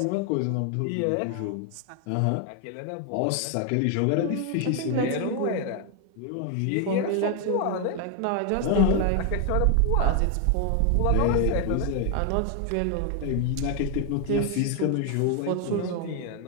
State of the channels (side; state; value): both; different; correlation 0.00